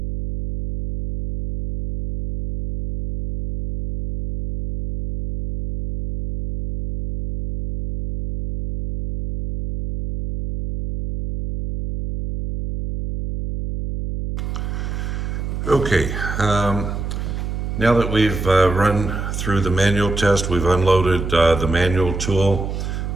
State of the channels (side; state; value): right; noise; hum, 4 dB below the sound